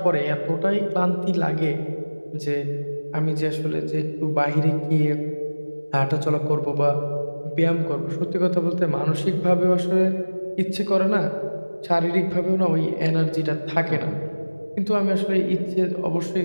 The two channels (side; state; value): both; inverted; correlation -1.00